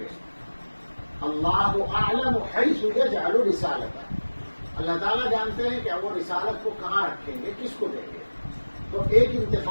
اللہ اعلم حیث یجعل رسالتہ، اللہ تعالیٰ جانتے ہیں کہ وہ رسالت کو کہاں رکھیں گے، کس کو دیں گے۔ تو ایک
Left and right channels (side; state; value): both; inverted; correlation -1.00